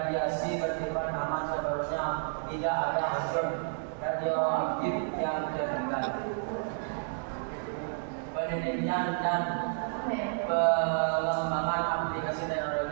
bersifat aman sebenarnya tidak ada unsur radioaktif yang tertinggal. Penelitian dan pengembangan aplikasi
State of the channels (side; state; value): left; silent; digital silence